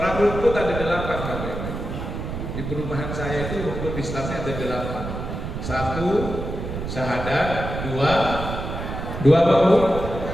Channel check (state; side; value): noise; right; rumble, 6 dB below the sound